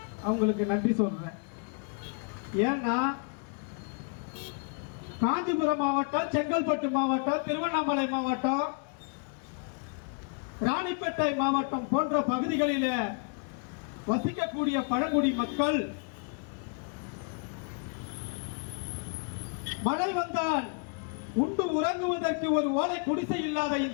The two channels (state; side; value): quieter; right; 39.2 dB